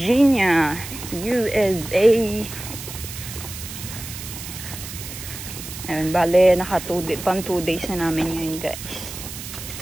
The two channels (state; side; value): noise; right; hiss, 10 dB below the sound